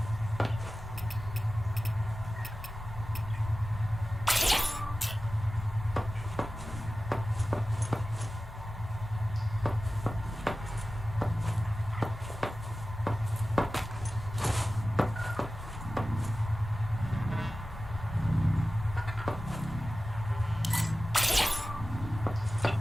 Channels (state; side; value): normal; both; correlation 0.95